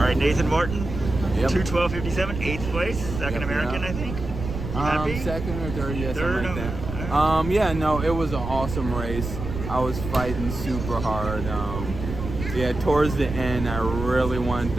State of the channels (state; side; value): noise; right; rumble, 7 dB below the sound